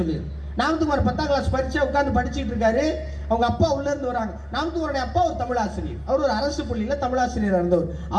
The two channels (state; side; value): identical; both; correlation 1.00